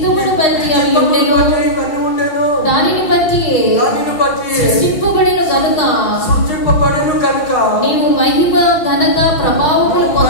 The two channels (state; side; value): late; right; 6.5 ms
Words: బట్టి అవి ఉండెను దానిని బట్టి సృష్టింపబడిన గనుక నీవు మహిమ ఘనత ప్రభావములు